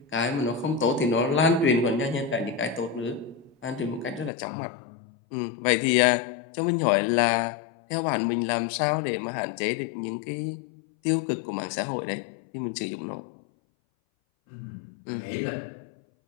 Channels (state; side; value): drops out; right; at 4.3 s